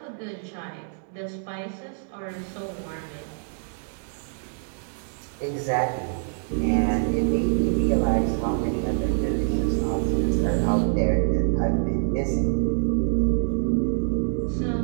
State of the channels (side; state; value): left; silent; digital silence